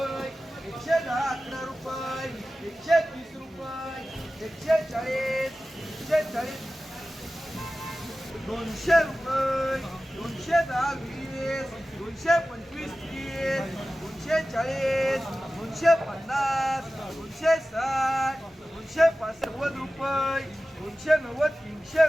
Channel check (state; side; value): normal; both; correlation 0.95